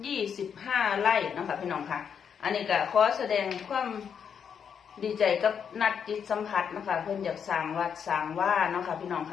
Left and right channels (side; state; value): right; quieter; 7.4 dB